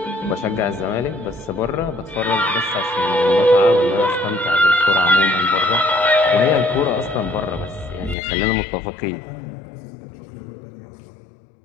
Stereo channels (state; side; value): drops out; right; at 8.2 s